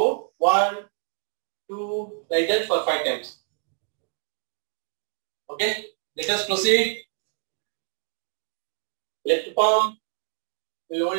1, 2, like that for 5 times. Okay. Let us proceed. Left palm will hold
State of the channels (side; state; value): left; silent; digital silence